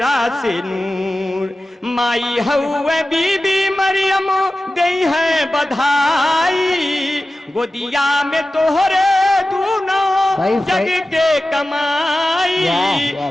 से नूर माई हउए बीबी मरियम गई है बधाई गोदिया में तोहरे दूनो जग के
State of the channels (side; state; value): both; normal; correlation 0.95